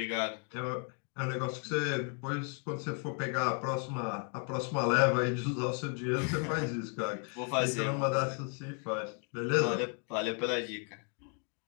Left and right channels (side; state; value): right; quieter; 38.7 dB